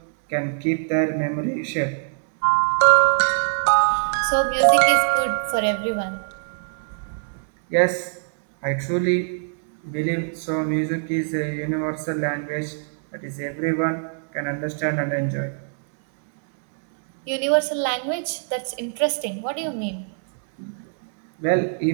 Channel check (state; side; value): silent; left; digital silence